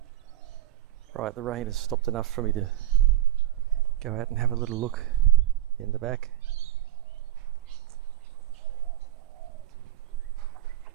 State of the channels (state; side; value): quieter; left; 14.1 dB